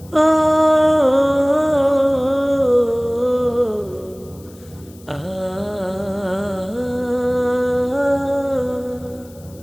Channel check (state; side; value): noise; left; hiss, 26 dB below the sound